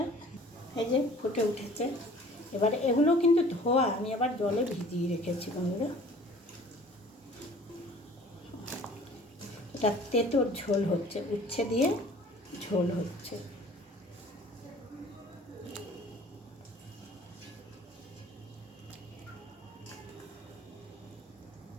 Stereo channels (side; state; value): both; normal; correlation 0.50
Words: এই যে ফুটে উঠেছে, এবারে এগুলো কিন্তু ধোয়া, আমি আবার জলে ভিজিয়ে রেখেছি বন্ধুরা। এটা তেঁতোর ঝোল হচ্ছে, উচ্ছে দিয়ে ঝোল হচ্ছে।